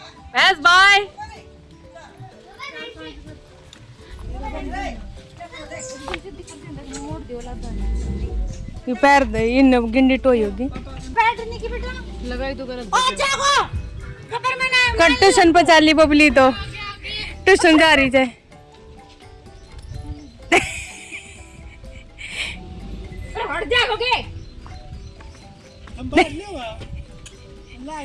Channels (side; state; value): both; identical; correlation 1.00